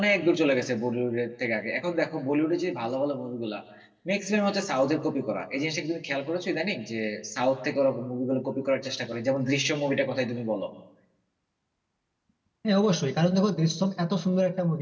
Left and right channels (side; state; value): both; identical; correlation 1.00